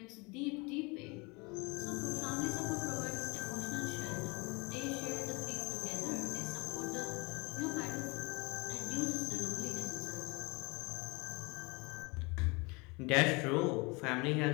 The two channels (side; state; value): right; quieter; 28.2 dB